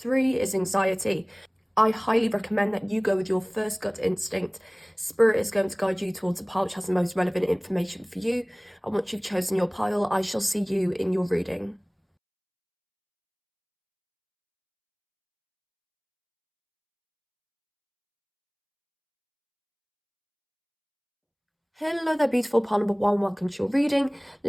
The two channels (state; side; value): identical; both; correlation 1.00